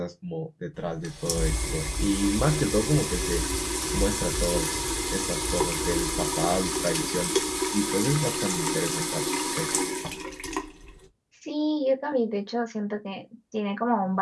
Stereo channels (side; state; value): both; identical; correlation 1.00